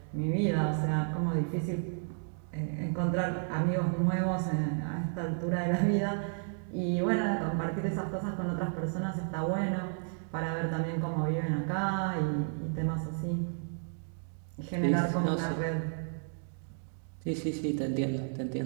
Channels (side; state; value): left; silent; 56 dB below the other